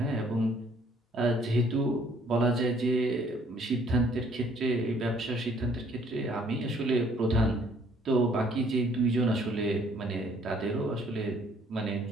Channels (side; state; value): both; normal; correlation 0.62